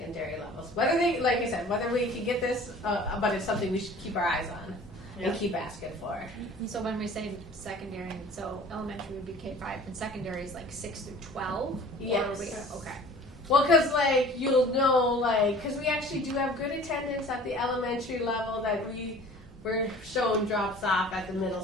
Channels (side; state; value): both; normal; correlation 0.46